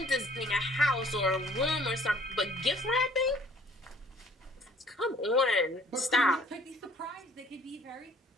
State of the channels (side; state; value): both; normal; correlation 0.55